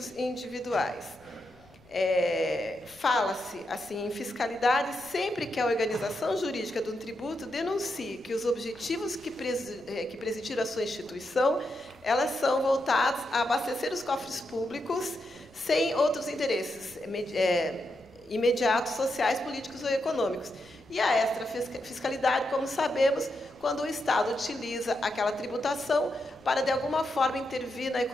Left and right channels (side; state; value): left; noise; rumble, 30 dB below the sound